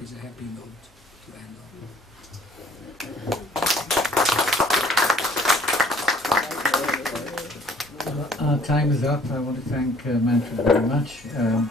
is a happy note to end on. Our time is up. I want to thank Manfred very much.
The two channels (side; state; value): both; normal; correlation 0.58